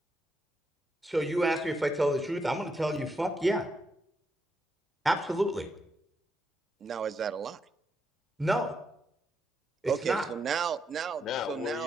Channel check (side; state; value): both; normal; correlation 0.81